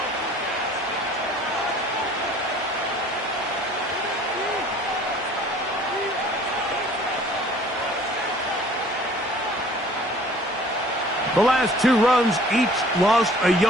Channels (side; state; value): both; normal; correlation 0.51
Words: The last 2 runs each lost a